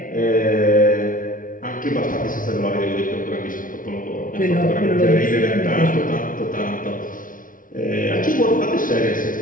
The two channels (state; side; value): late; right; 0.39 ms